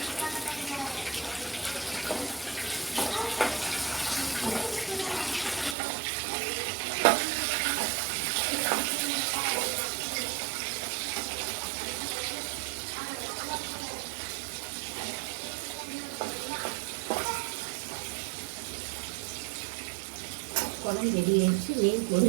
குழம்பு ரெடி ஆயிடுச்சு. மீன்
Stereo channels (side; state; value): left; drops out; at 5.8 s